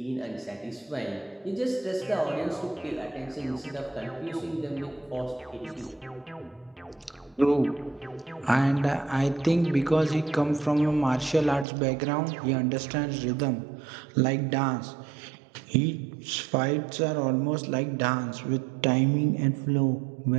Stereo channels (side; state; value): left; drops out; at 11.7 s